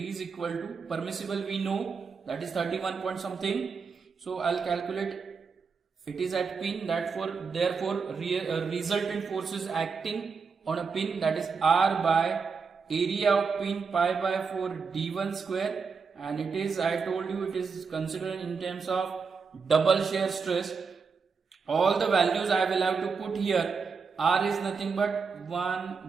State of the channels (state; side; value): quieter; left; 5.3 dB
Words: equal to permissible, we know that is 31 point something. So I'll calculate it is at pin, therefore resultant force is acting on a pin, that is R by area of pin pi by 4 D1 square, and it is, I told you, it is considered in terms of double shear stress. All the values I will have to put here. R is nothing but